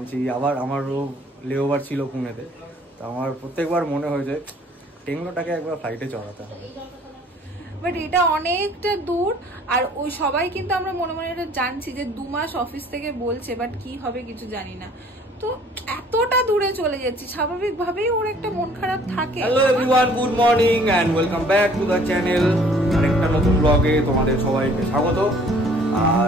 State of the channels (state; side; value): normal; both; correlation 0.55